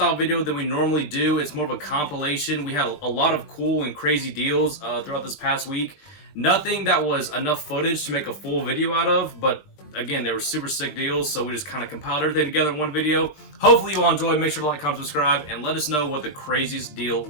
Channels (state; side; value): late; right; 20 ms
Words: video than we normally do. It's more of a compilation. We had a lot of cool and crazy deals throughout this past week. Nothing that was enough footage to make a full video out of, but again, they were super sick deals, so we just kind of compiled everything together in one video. Hopefully you all enjoyed. Make sure to like, comment, subscribe, and let us know what the craziest deal